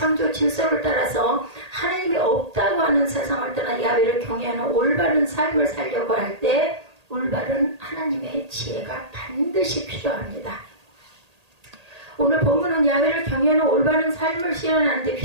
질서를 따라서 하나님이 없다고 하는 세상을 떠나 야훼를 경외하는 올바른 삶을 살려고 할 때 올바른 하나님의 지혜가 반드시 필요합니다. 오늘 본문은 야훼를 경외하는 올바른 삶을 실현하는 데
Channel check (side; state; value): left; late; 1.8 ms